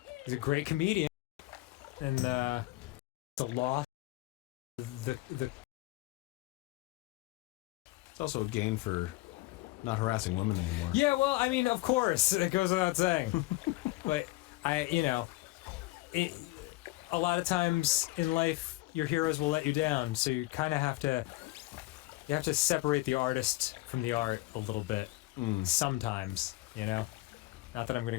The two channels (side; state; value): right; quieter; 19.7 dB